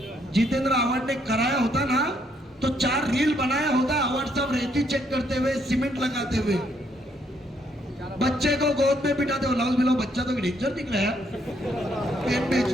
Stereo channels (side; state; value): both; normal; correlation 0.71